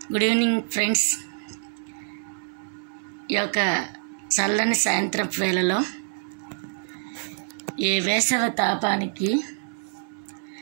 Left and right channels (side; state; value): left; silent; digital silence